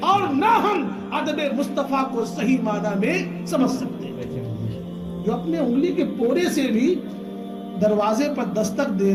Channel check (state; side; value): identical; both; correlation 1.00